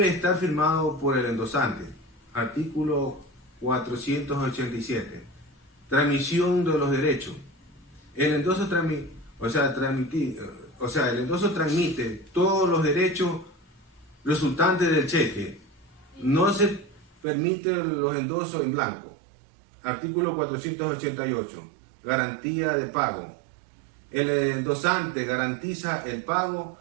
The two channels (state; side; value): drops out; left; at 17.2 s